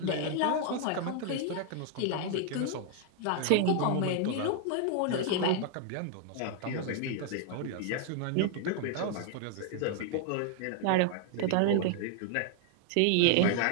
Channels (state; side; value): different; both; correlation 0.00